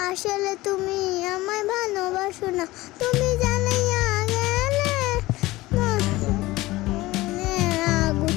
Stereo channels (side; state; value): right; quieter; 18.9 dB